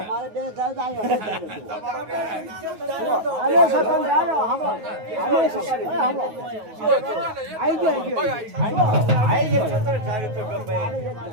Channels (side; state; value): left; late; 9.4 ms